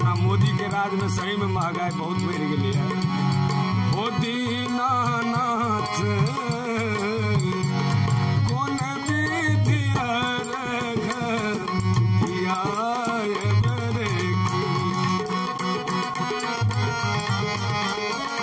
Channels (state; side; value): identical; both; correlation 1.00